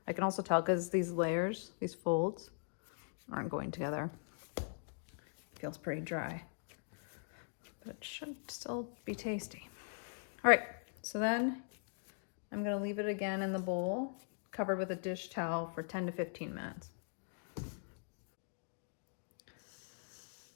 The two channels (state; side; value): silent; right; digital silence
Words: I can also tell because these layers, these folds, aren't going together. It feels pretty dry, but it should still be tasty. All right, so then I'm gonna leave it again in the bowl, covered with a dish towel for 10 to 15 minutes.